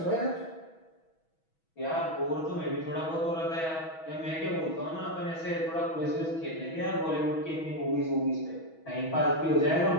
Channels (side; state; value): right; late; 6.2 ms